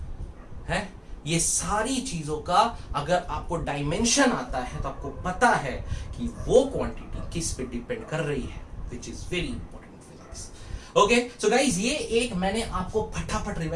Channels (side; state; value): both; identical; correlation 1.00